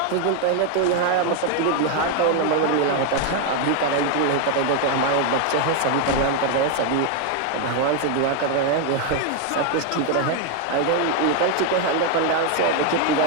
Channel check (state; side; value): different; both; correlation 0.01